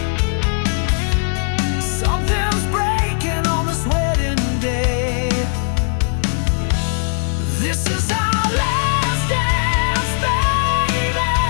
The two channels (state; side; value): silent; right; 60 dB below the other